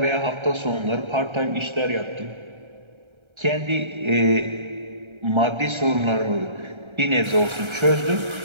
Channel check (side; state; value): left; late; 1.3 ms